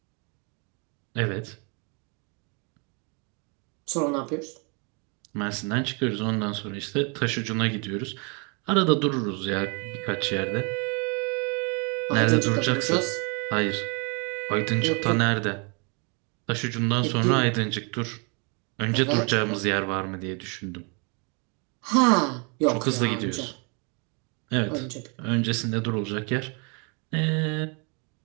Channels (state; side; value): quieter; left; 34.2 dB